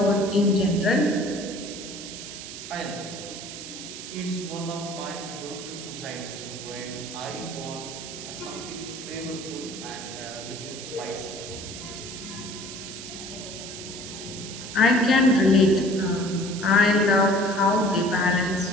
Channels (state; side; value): noise; right; hiss, 10 dB below the sound